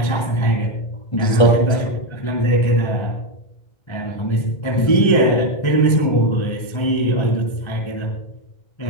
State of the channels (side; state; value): right; late; 1.4 ms